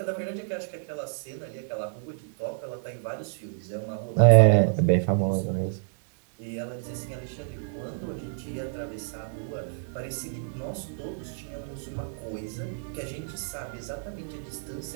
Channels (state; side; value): silent; left; digital silence